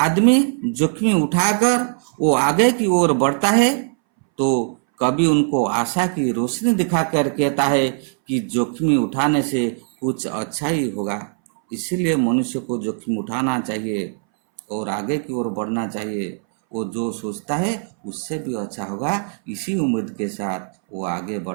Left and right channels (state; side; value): silent; left; 63 dB below the other